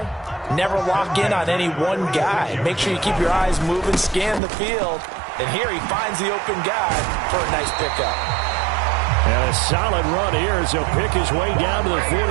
never lock in on any one guy. Make sure you keep your eyes moving, scan the field. And here he finds the open guy for a nice pickup. And a solid run here as he'll pick his way down to the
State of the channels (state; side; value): drops out; left; at 4.4 s